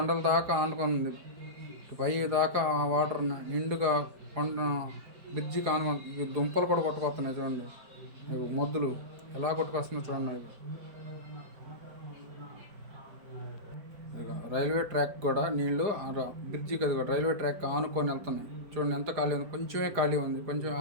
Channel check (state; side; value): late; left; 4.8 ms